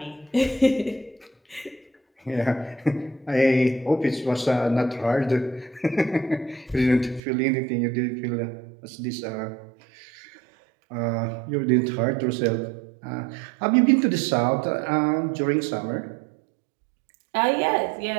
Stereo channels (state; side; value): drops out; left; at 7.2 s